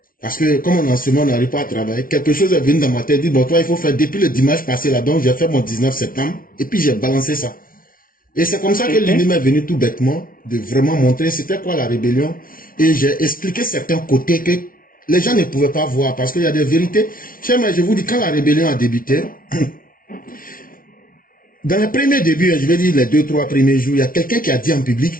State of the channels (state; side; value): late; right; 0.41 ms